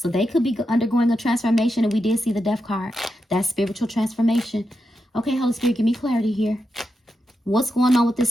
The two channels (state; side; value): normal; both; correlation 0.87